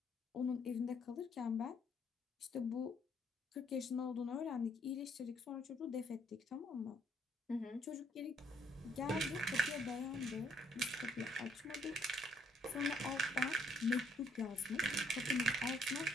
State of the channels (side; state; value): both; normal; correlation 0.68